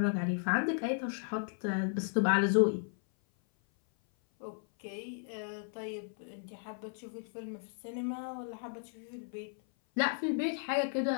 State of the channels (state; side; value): silent; right; 55 dB below the other